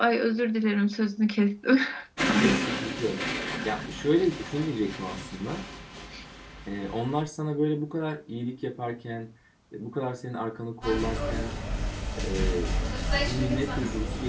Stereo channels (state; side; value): identical; both; correlation 1.00